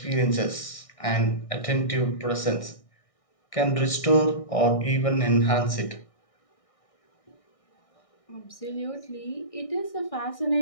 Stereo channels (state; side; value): late; right; 1.6 ms